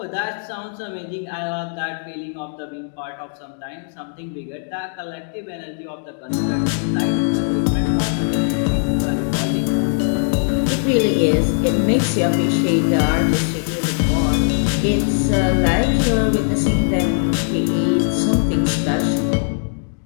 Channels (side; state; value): right; silent; digital silence